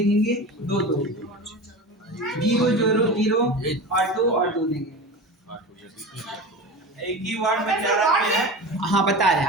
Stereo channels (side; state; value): both; normal; correlation 0.30